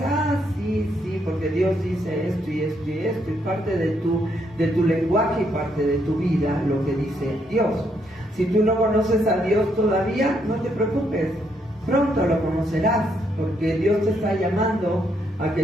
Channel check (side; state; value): both; normal; correlation 0.75